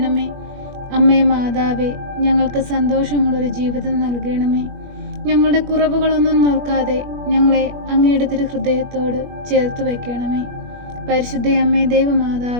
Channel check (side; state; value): left; late; 21 ms